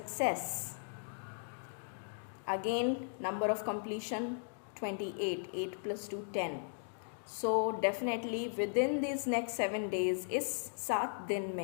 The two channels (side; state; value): right; silent; digital silence